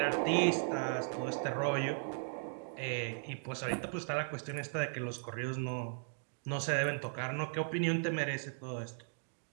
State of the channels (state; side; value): silent; left; digital silence